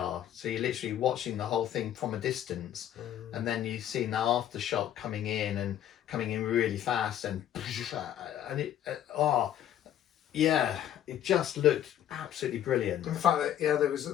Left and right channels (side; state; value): right; quieter; 11.0 dB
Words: So you're literally watching the whole thing from a distance, and then you've seen the aftershock coming in really fast, and it it just looked absolutely brilliant. In fact, there